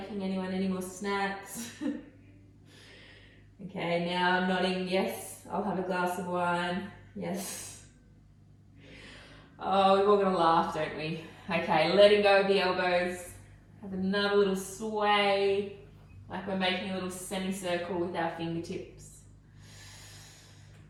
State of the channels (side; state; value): both; identical; correlation 1.00